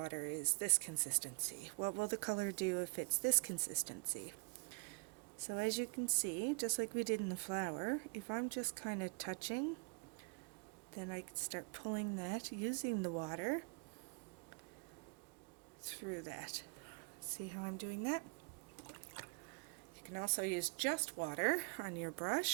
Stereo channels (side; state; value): left; quieter; 32.9 dB